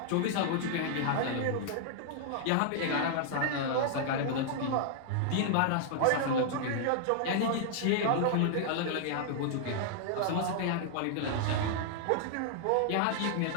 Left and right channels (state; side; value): different; both; correlation -0.01